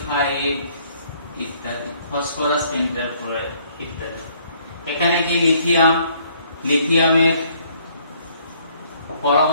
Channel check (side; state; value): both; inverted; correlation -0.63